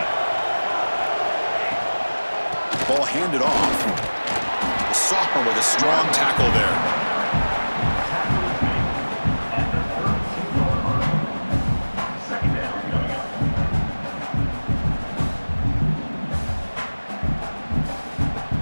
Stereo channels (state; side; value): inverted; both; correlation -1.00